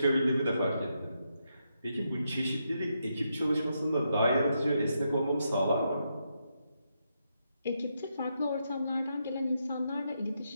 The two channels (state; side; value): inverted; both; correlation -0.82